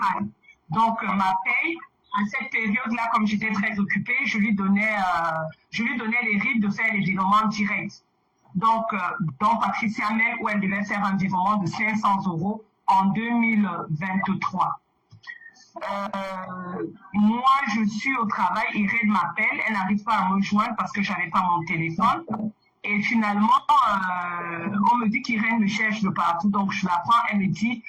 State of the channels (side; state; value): both; identical; correlation 1.00